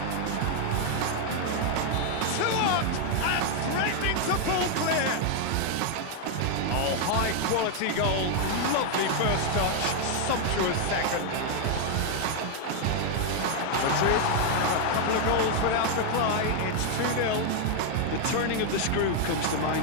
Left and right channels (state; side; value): different; both; correlation 0.00